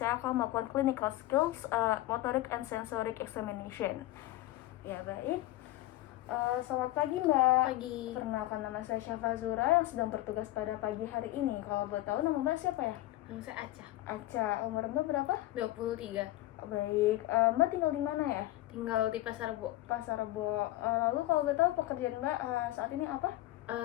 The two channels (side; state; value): right; quieter; 16.3 dB